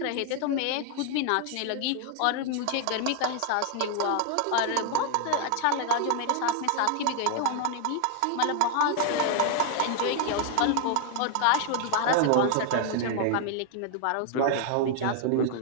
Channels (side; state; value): both; different; correlation 0.01